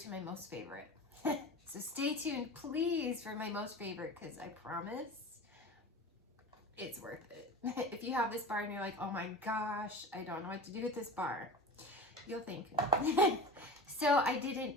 my most favorite. So stay tuned, please, for my most favorite, because I promise it's worth it. If you have this bar and you're like, oh my gosh, I don't know what to do with this bar, you'll thank me. So I did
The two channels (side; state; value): both; normal; correlation 0.33